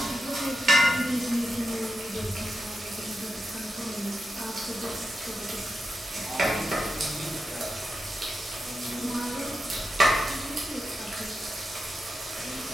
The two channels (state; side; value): normal; both; correlation 0.88